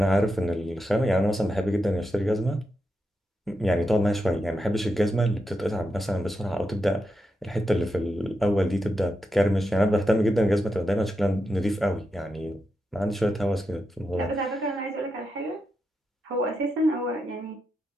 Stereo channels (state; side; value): normal; both; correlation 0.86